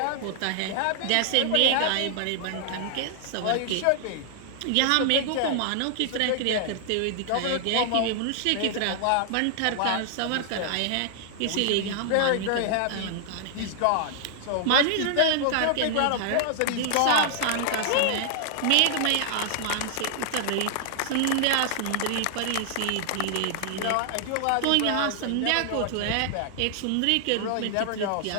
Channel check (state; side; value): different; both; correlation 0.00